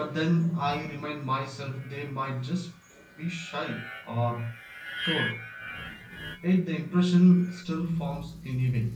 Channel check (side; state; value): both; identical; correlation 1.00